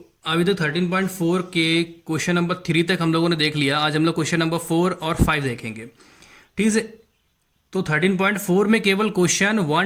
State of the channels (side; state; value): both; identical; correlation 1.00